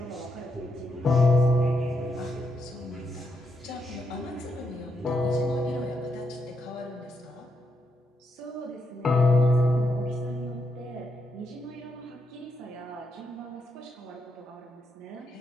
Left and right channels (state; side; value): normal; both; correlation 0.80